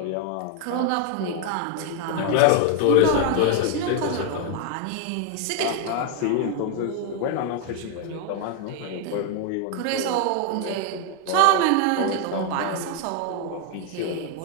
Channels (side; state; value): both; different; correlation 0.00